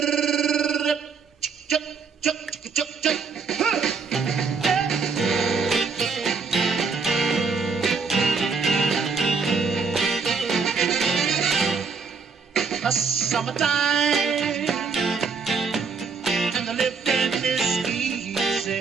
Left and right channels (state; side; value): quieter; left; 5.1 dB